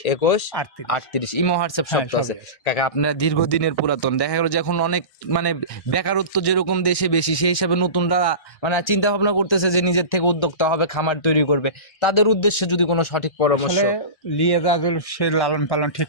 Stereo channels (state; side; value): late; right; 1.6 ms